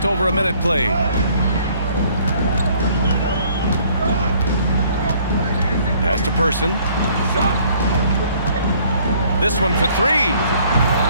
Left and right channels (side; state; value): both; inverted; correlation -0.60